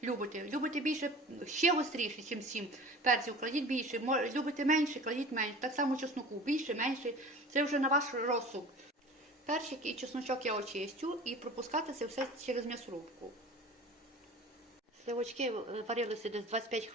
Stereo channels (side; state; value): both; normal; correlation 0.40